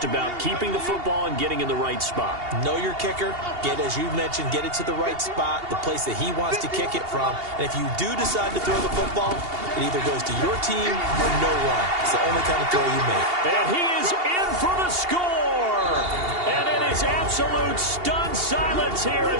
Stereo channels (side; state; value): left; late; 2.8 ms